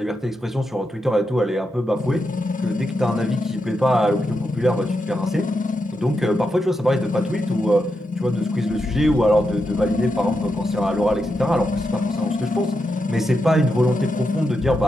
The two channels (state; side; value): normal; both; correlation 0.86